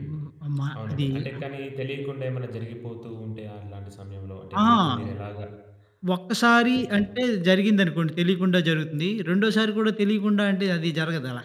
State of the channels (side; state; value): both; identical; correlation 1.00